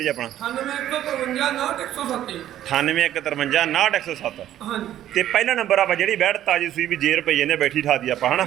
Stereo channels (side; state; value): left; quieter; 12.1 dB